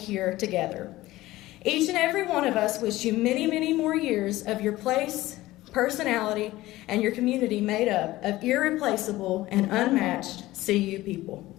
together. Each and every one of us wish you many, many more years of your place, personality, and your community made up of irreplaceable and unmatched CU people.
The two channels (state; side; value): quieter; right; 17.3 dB